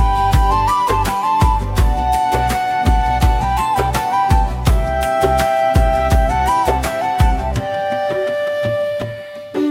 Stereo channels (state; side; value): identical; both; correlation 1.00